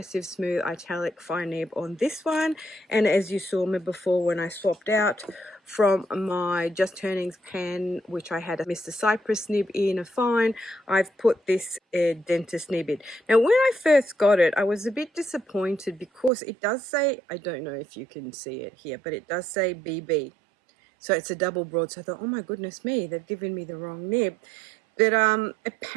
smooth italic fine nib on this one. And as you saw me before when I swapped out from my Just Turnings pen, which I had a Mr. Cypress nib in a fine, I've put this dentist nib in. Now when I first got it, I was a bit disappointed because it does say, I don't know if you can see it here, but it does say BB. So it's a double broad. So I thought, oh my goodness me, they've given me the wrong nib. But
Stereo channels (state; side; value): drops out; left; at 16.3 s